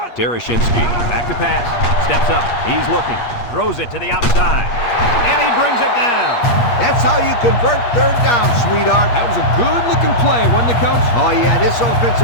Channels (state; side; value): late; right; 8.4 ms